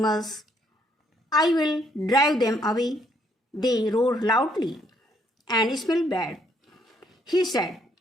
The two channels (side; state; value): both; normal; correlation 0.69